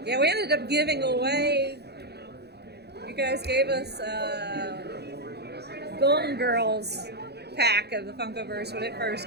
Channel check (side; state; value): left; late; 0.48 ms